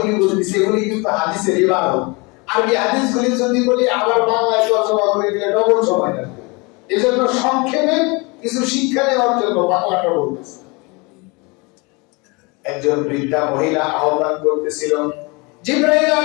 বলতেছি এগুলি কিন্তু হাদিসের ইবারত। আরবি হাদিসগুলি যদি বলি আবার বাংলায় তরজমা করে দিলে ডবল সময় লাগবে। এজন্য সংক্ষেপে কিছু শিক্ষা নেওয়ার জন্য বাংলাটা বলতেছি। একজন বৃদ্ধা মহিলা আহ্বান করতেছিল। জিবরাইল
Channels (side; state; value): right; quieter; 27.9 dB